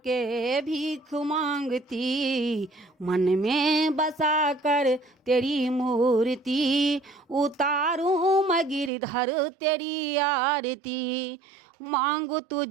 भीख मांगती, मन में बसा कर तेरी मूर्ति उतारूं मैं गिरधर तेरी आरती। मांगू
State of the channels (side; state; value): left; drops out; at 8.9 s